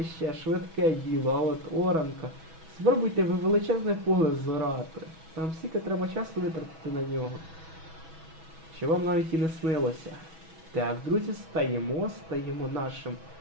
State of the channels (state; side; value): late; left; 6.1 ms